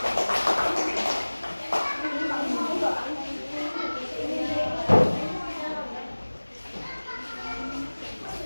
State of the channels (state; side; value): inverted; both; correlation -1.00